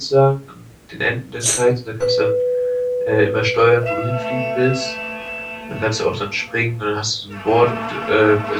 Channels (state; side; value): identical; both; correlation 1.00